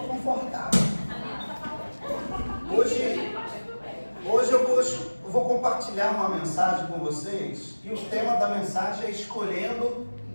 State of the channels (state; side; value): inverted; both; correlation -1.00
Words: Hoje eu vou compartilhar uma mensagem com vocês e o tema da mensagem é escolhendo